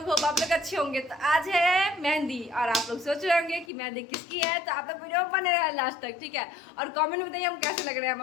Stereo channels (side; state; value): right; drops out; at 3.7 s